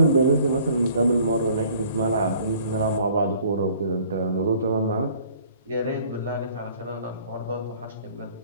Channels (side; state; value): both; inverted; correlation -0.55